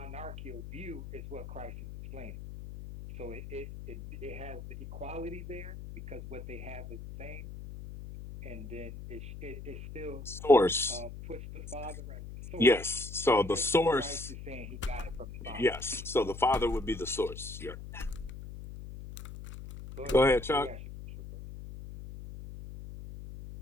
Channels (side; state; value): left; noise; hum, 11 dB below the sound